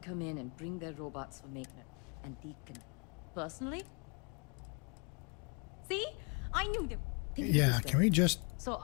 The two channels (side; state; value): right; quieter; 34.6 dB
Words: come in and bring their robots for maintenance. And Deacon. Personally? See? I knew they... Yeah, can we just... So